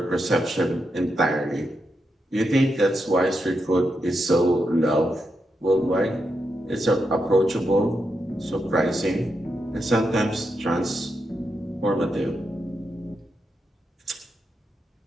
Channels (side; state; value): both; normal; correlation 0.84